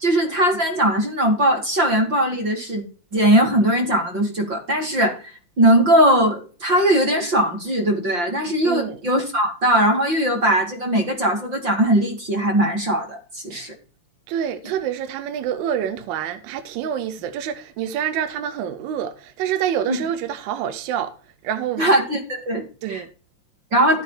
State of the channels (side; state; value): left; late; 5.7 ms